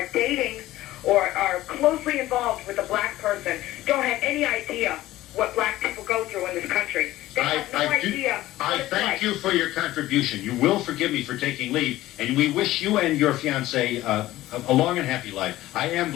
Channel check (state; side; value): quieter; right; 15.9 dB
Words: dating or are closely involved with a black person, don't have any idea what black people go through in this country. They have no idea. I thank you for your contribution. You will forgive me for taking leave, and we wish you and your fiancé a long and happy life. I am